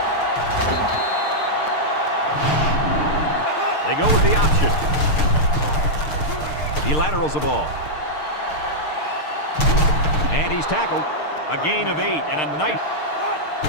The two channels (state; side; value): late; right; 6.6 ms